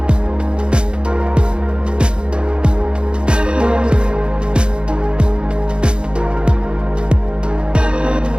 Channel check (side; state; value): left; late; 0.052 ms